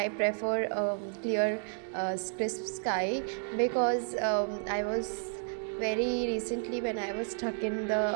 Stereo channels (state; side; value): silent; left; 57 dB below the other